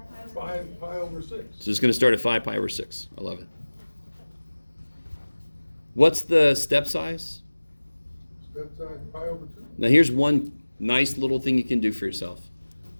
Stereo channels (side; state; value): both; inverted; correlation -1.00